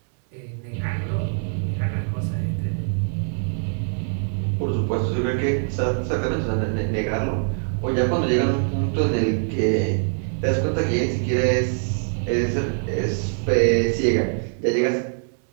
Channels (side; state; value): left; silent; digital silence